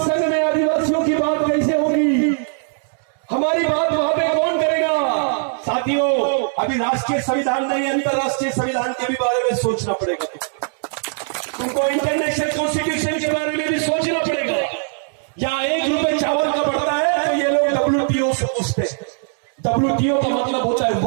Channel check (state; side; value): silent; left; 63 dB below the other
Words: संघ में आदिवासियों की बात कैसे होगी, हमारी बात वहां पे कौन करेगा। साथियों, अभी राष्ट्रीय संविधान नहीं, अंतरराष्ट्रीय संविधान के भी बारे में सोचना पड़ेगा। तुमको इंटरनेशनल कॉन्स्टिट्यूशन के बारे में भी सोचना पड़ेगा। यहाँ ₹1 चावल का बढ़ता है तो ये लोग WTO से पूछते हैं। WTO का मतलब होता है